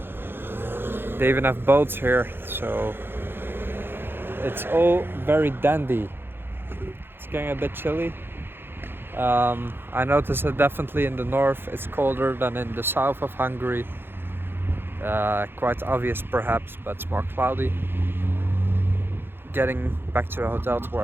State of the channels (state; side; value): late; left; 0.10 ms